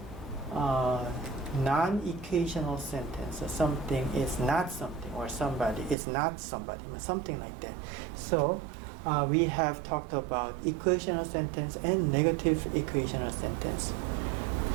non-equational sentence. So something is not something, or somebody is not somebody, something like that. So we have talked about equational sentence and negative equational sentence.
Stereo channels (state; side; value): drops out; left; at 6.0 s